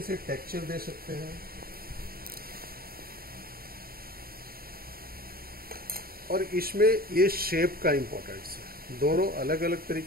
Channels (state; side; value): late; left; 0.43 ms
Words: से टेक्सचर दे सकते हैं। और इसमें ये शेप का इंपॉर्टेंस है, दोनों अलग अलग